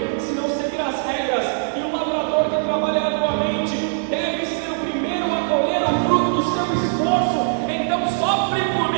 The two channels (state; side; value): silent; left; digital silence